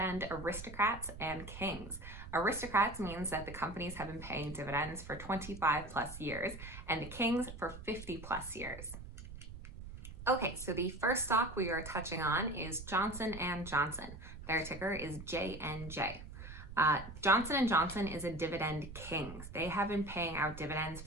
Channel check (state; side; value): noise; right; rumble, 12 dB below the sound